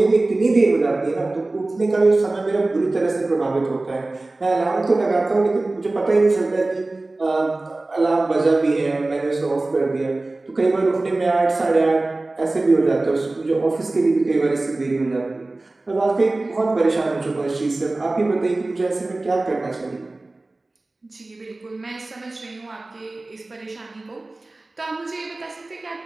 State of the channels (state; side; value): quieter; left; 3.0 dB